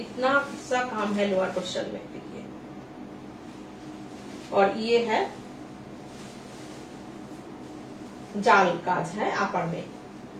सा काम है लोअर पोर्शन में, देखिए। और ये है जाल काज है अपर में,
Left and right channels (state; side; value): identical; both; correlation 1.00